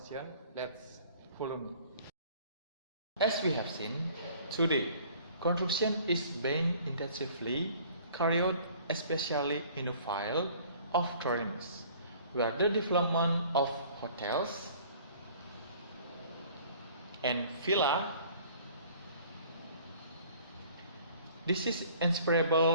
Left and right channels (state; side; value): inverted; both; correlation -0.52